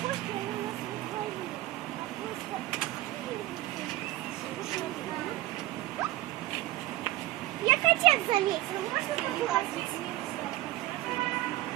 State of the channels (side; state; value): left; quieter; 16.7 dB